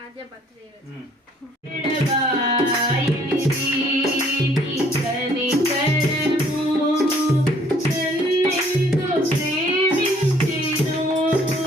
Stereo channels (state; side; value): normal; both; correlation 0.61